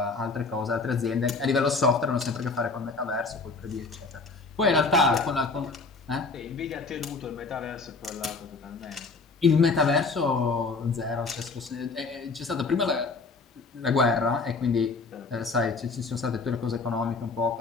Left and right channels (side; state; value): right; quieter; 4.0 dB